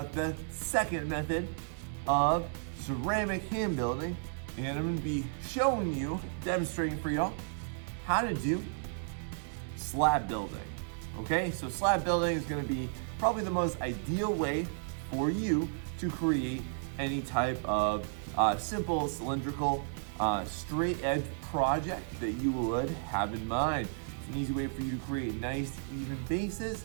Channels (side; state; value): left; silent; 56 dB below the other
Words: the second method of ceramic hand building, and I'm gonna be showing you, demonstrating for y'all, how to do slab building. Okay, so slab building is gonna be probably the most ideal way for you to create any type of simple, cylindrical, straight edge project that you would have in mind. It's an easy way for you to create nice, even bases,